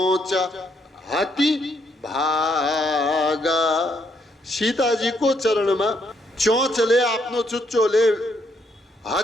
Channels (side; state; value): both; normal; correlation 0.73